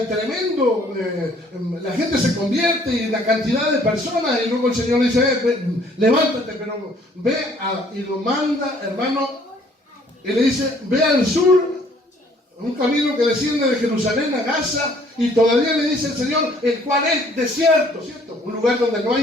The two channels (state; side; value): normal; both; correlation 0.60